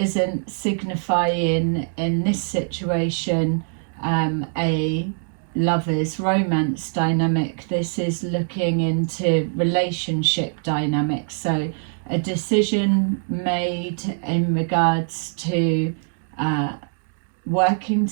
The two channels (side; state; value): left; silent; 64 dB below the other